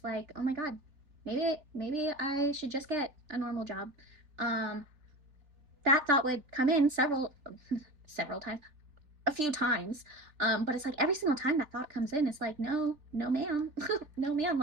like, oh my god, maybe I should just get a normal job. Um, that thought would come in several times, a few times. But it's like every single time that thought comes in, it's like, no, no, ma'am, no, ma'am.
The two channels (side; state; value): left; late; 3.4 ms